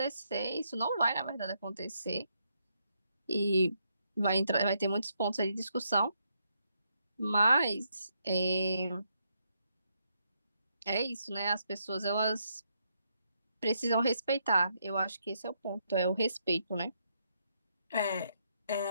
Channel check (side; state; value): both; inverted; correlation -0.78